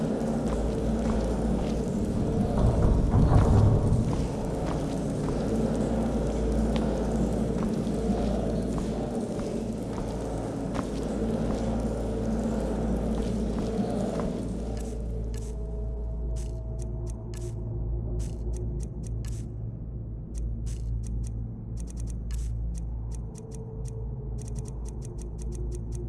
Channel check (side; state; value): both; identical; correlation 1.00